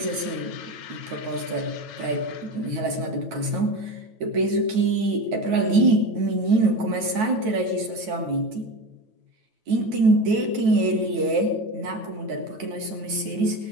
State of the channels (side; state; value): left; late; 9.2 ms